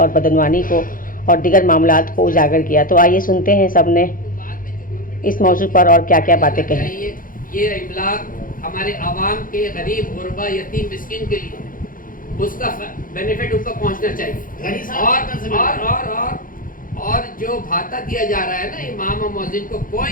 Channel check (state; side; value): late; right; 0.40 ms